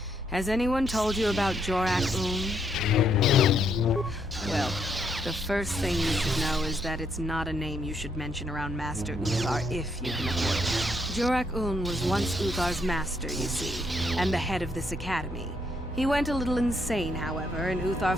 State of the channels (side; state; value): both; normal; correlation 0.74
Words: Has anyone told you about Jorak-Un? Well, the first thing you should know is that it's not a name you should mention around Master Uthar if you can avoid it. Jorak-Un was once Uthar's master, you see, and the head of this academy. He went a little insane, however, and Uthar